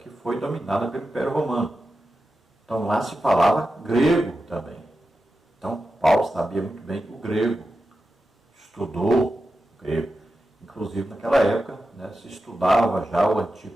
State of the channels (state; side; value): normal; both; correlation 0.91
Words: foi dominada pelo Império Romano. Então lá se falava grego também. Então Paulo sabia muito bem o grego, estudou o grego. Inclusive naquela época se estudava já o Antigo